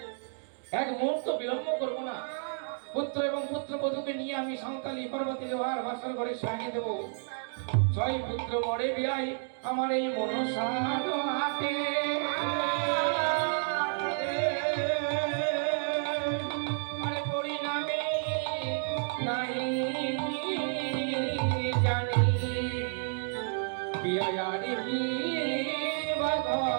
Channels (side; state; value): left; silent; digital silence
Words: এক মুহূর্ত বিলম্ব করবো না। পুত্র এবং পুত্রবধূকে নিয়ে আমি সাঁওতালি পর্বতে লোহার বাসর ঘরে সাজিয়ে দেবো। ছয় পুত্র মরে বিয়াই আমার এই মনসার হাতে আরে পরিণামে নাই জানি বিয়ারি